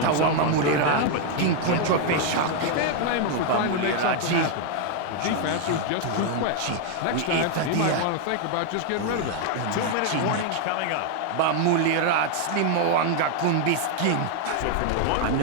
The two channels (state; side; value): different; both; correlation 0.00